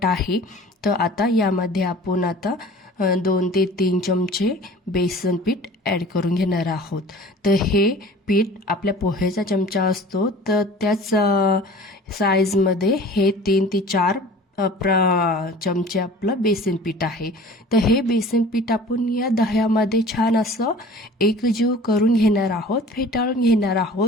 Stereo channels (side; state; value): both; normal; correlation 0.44